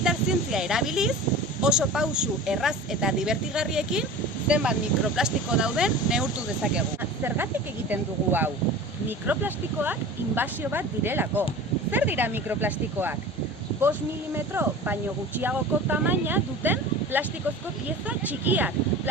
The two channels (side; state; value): both; normal; correlation 0.37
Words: zientzia erabiliz, oso pausu erraz eta divertigarriekin zenbat mikroplastiko dauden neurtu dezakegu. Zergatik egiten dugu hau? Mikroplastikoak inbasio bat direlako. Zer dira mikroplastikoak? 5 milimetro baino gutxiagoko tamaina duten plastikozko pieza txikiak.